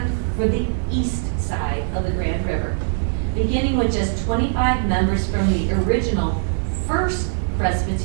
for the east side of the Grand River, beginning with just 25 members from the original First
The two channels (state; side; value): silent; left; digital silence